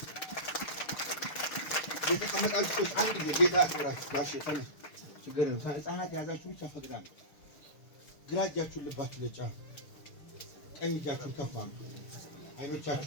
የተቀመጣችሁ አንድ ጊዜ ጌታ ያክብራችሁ ጋሽ ተነሱ ችግር ነው ህፃናት ያዛችሁ ብቻ ፈቅዳለሁ ግራ እጃችሁን ልባችሁ ለጫ ቀኝ እጃችሁን ከፍ አድርጉ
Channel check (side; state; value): right; late; 6.6 ms